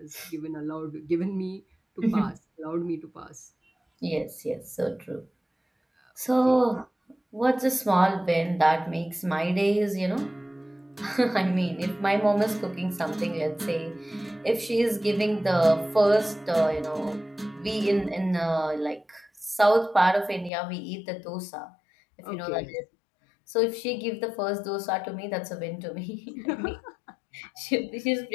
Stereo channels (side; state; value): right; drops out; at 20.5 s